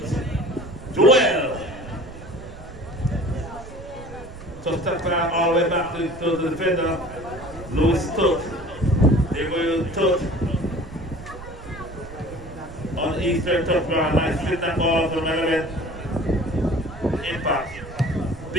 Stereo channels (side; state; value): right; noise; rumble, 15 dB below the sound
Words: Joel. Just tap that all the way back to the defender, Louis Tutt. There you go, Tutt. On the eastern touchdown, nice flip that ball from Element. Impact.